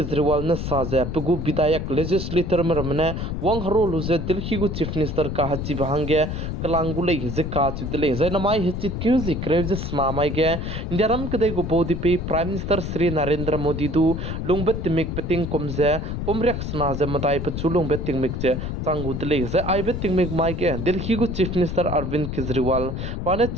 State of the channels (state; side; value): noise; left; rumble, 4 dB below the sound